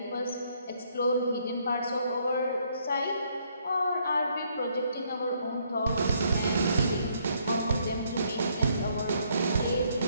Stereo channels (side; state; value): both; inverted; correlation -0.69